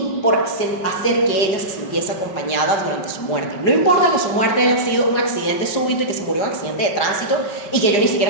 por hacer que ella se sintiese acompañada durante su muerte. No importa que su muerte haya sido un accidente súbito y que se murió en un accidente de tránsito y que yo ni siquiera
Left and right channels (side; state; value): right; late; 5.3 ms